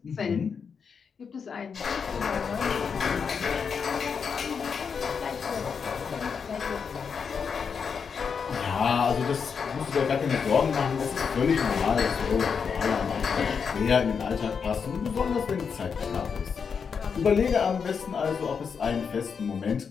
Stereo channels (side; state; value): right; quieter; 6.2 dB